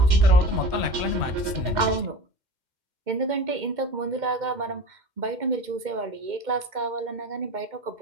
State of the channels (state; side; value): late; left; 2.1 ms